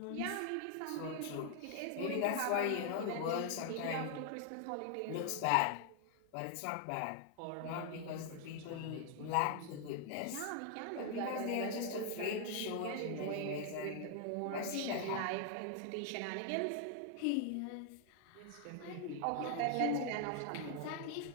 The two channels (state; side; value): different; both; correlation 0.00